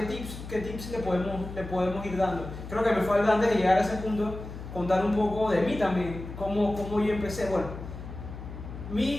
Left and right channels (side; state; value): left; noise; hum, 10 dB below the sound